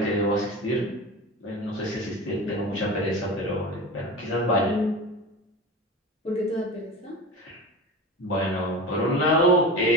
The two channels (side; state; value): both; normal; correlation 0.30